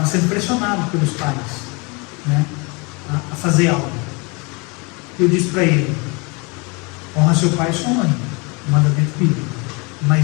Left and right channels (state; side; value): quieter; right; 29.3 dB